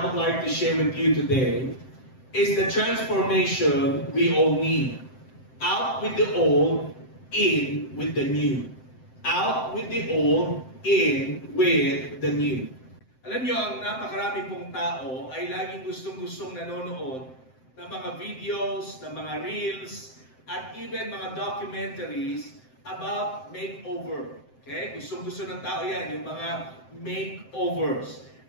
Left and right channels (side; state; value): right; late; 7.7 ms